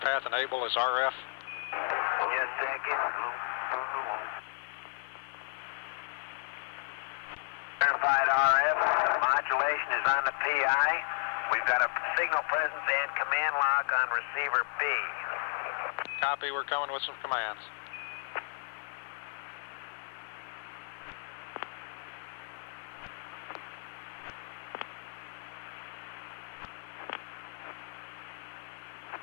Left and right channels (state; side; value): silent; right; digital silence